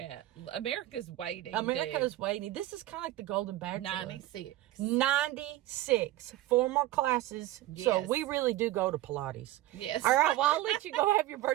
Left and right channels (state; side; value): quieter; left; 15.6 dB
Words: America's waiting. America's waiting. This is kind of like the Golden Bachelor. 96. 96. 4 more classes. Yes. So we really do go to Pilates. Yes. All right. Well, I'll let you go have your